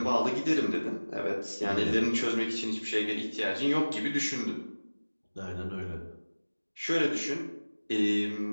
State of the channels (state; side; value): inverted; both; correlation -1.00